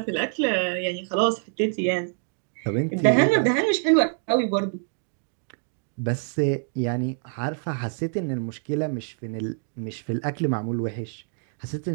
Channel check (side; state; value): left; silent; 55 dB below the other